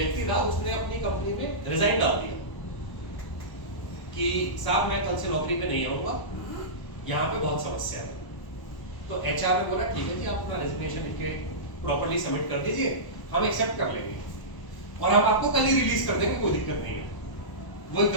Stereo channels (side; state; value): right; late; 1.1 ms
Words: था, उसने अपनी कंपनी में रिजाइन डाल दिया कि साहब मैं कल से नौकरी पे नहीं आऊंगा, यहाँ पे बहुत समस्या है। तो एचआर ने बोला ठीक है जी, आप अपना रेजिग्नेशन लिख के प्रॉपर्ली सबमिट कर दीजिए, हम एक्सेप्ट कर लेंगे और हम आपको कल ही रिलीज कर देंगे, कोई दिक्कत नहीं है। वो